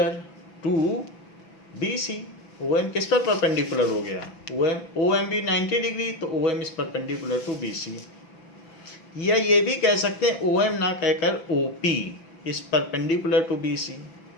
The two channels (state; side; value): late; right; 6.0 ms